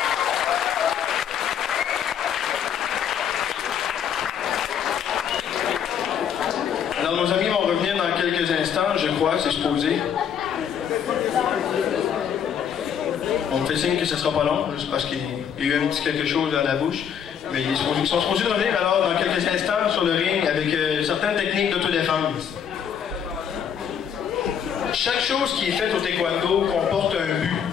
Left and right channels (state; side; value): quieter; right; 8.2 dB